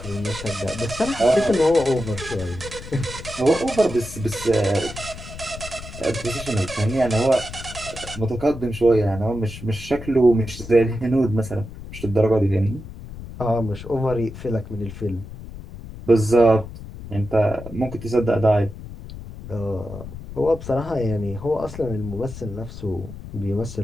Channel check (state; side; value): noise; left; rumble, 12 dB below the sound